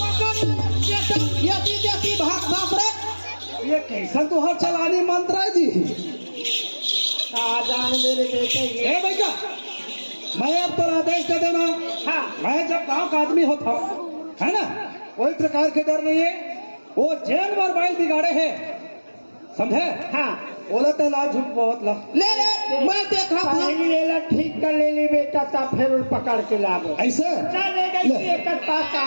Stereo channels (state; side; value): inverted; both; correlation -1.00